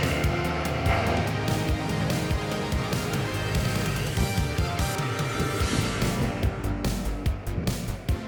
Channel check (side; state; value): both; identical; correlation 1.00